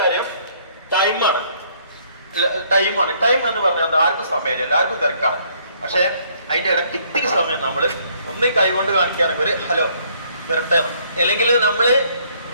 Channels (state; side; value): inverted; both; correlation -0.65